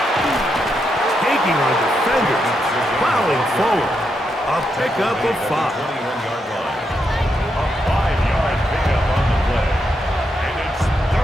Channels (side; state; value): both; normal; correlation 0.82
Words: Taking on defenders, plowing forward. A pickup of 5. A 5-yard pickup on the play. And it's